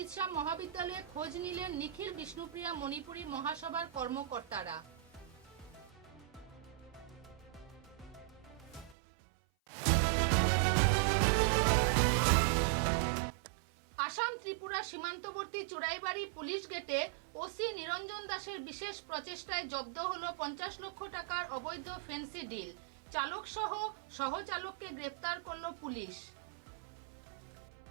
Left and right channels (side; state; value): left; drops out; at 9.0 s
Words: মহাবিদ্যালয়ে খোঁজ নিলেন নিখিল বিষ্ণুপ্রিয়া মণিপুরী মহাসভার কর্মকর্তারা। আসাম ত্রিপুরা সীমান্তবর্তী চুড়াইবাড়ি পুলিশ গেটে ওসি নিরঞ্জন দাসের বিশেষ প্রচেষ্টায় জব্দ হলো 50 লক্ষ টাকার অবৈধ ফেন্সি ডিল। চালক সহ সহচালককে গ্রেফতার করল পুলিশ।